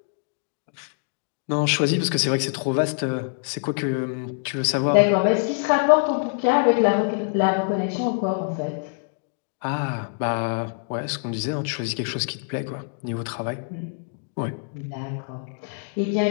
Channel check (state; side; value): silent; right; digital silence